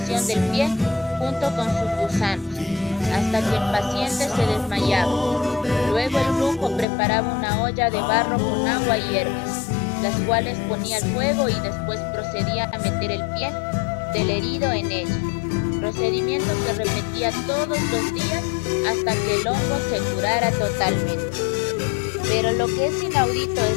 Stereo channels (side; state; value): right; drops out; at 6.9 s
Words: del pie junto con sus gusanos, hasta que el paciente se desmayaba. Luego el brujo preparaba una olla de barro con agua y hierbas, las cuales ponía al fuego y después procedía a meter el pie del herido en ella, procedimiento que repetía todos los días hasta que el hongo se curara totalmente. Pero lo que es inaudito es